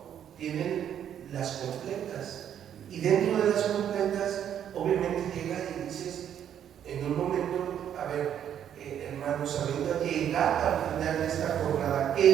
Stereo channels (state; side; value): quieter; left; 9.6 dB